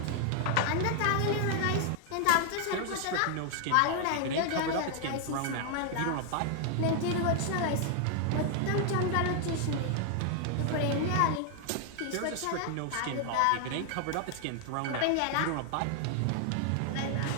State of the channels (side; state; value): both; different; correlation 0.00